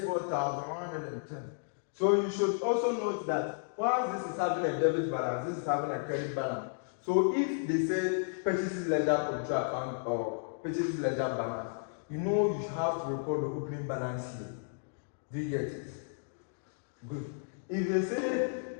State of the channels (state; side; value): silent; right; digital silence